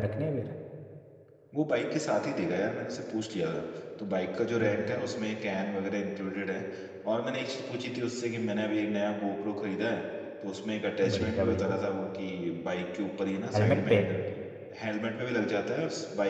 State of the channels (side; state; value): both; identical; correlation 1.00